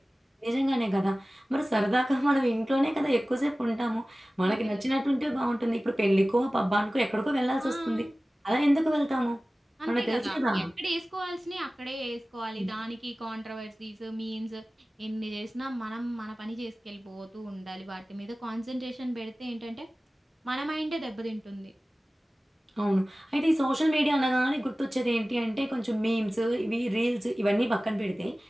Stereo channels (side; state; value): both; normal; correlation 0.97